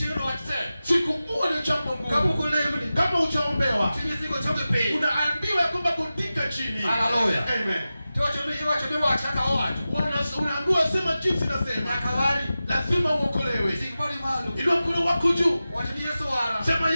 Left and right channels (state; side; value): inverted; both; correlation -0.94